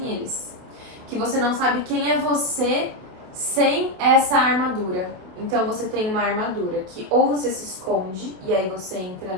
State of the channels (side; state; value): left; late; 28 ms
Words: eles. Que você não sabe quem é você sem essa armadura. Então você tem uma armadura que ou você se esconde e aí você entra